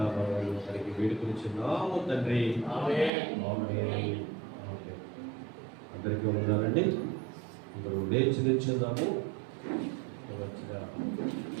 తనకి వేడుకొనిచున్నాము తండ్రి. ఆమేన్. అందరికీ ఉన్నారండి. అందరూ లేచి నిల్చుందాము.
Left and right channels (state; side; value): drops out; left; at 3.1 s